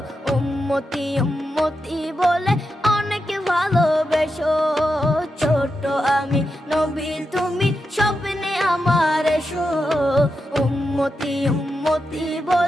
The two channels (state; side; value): normal; both; correlation 0.87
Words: উম্মতি উম্মতি বলে অনেক ভালোবেসো। ছোট আমি নবী তুমি স্বপ্নে আমার এসো, উম্মতি উম্মতি